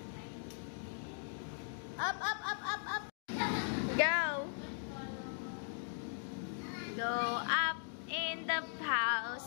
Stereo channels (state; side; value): silent; right; digital silence